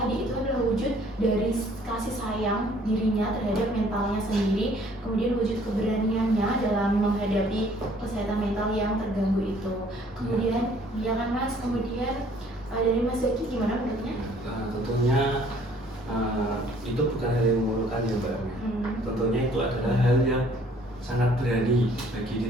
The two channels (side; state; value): both; normal; correlation 0.58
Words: itu adalah wujud dari kasih sayang dirinya terhadap mentalnya sendiri, kemudian wujud keberaniannya dalam menghadapi kesehatan mental yang terganggu itu. Kemudian ya kan Mas, kemudian dari Mas Zaki gimana menurutnya? Tentunya itu bukan hal yang memalukan ya Mbak. Tentunya itu adalah hal yang sangat berani bagi